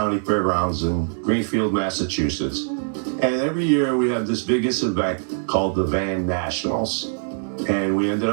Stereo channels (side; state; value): left; silent; 64 dB below the other